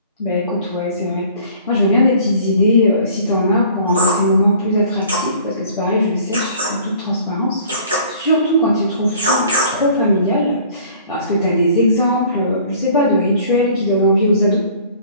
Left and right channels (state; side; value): inverted; both; correlation -0.52